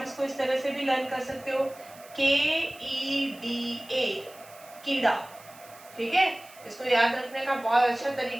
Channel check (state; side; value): noise; right; hiss, 22 dB below the sound